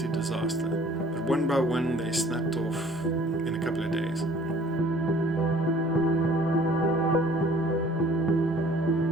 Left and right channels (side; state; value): both; normal; correlation 0.53